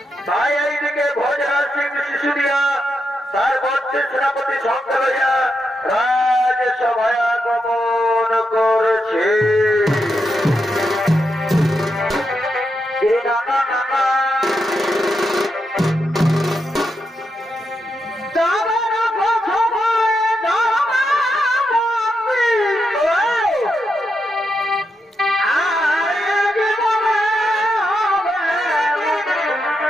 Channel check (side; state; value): both; normal; correlation 0.84